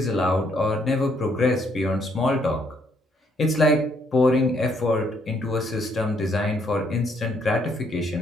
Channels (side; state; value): both; normal; correlation 0.70